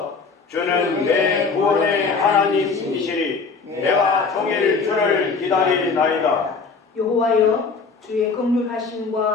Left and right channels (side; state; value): right; quieter; 4.7 dB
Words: 주는 내 구원의 하나님이시니 내가 종일 주를 기다리나이다. 여호와여 주의